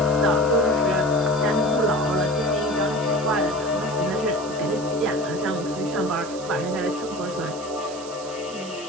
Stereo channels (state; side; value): noise; right; hiss, 15 dB below the sound